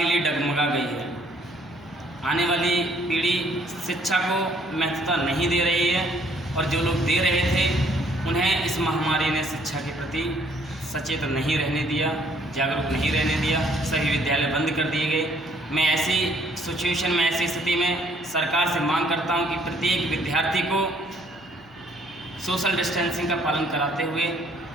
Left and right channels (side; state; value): right; noise; hum, 28 dB below the sound